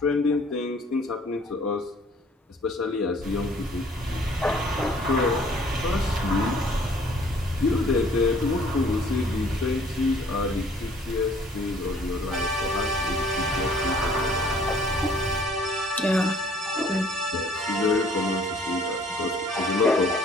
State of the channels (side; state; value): both; normal; correlation 0.57